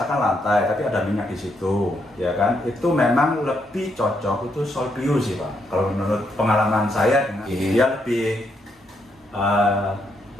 lantai tapi ada minyak di situ, ya kan? Itu memang lebih cocok itu Solview sih Pak. Kalau menurut pengalaman saya, dia lebih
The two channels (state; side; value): normal; both; correlation 0.77